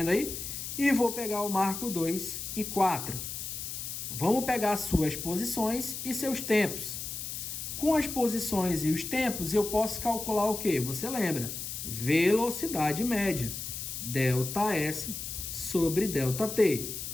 aí? E vou pegar o marco 2 e 4. Vamos pegar suas posições e seus tempos. Com as posições e os tempos, eu posso calcular o quê? Você lembra? Velocidade média. ΔS sobre ΔT.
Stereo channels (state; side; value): noise; left; hiss, 6 dB below the sound